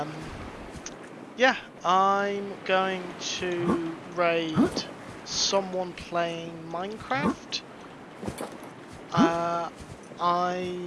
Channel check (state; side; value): identical; both; correlation 1.00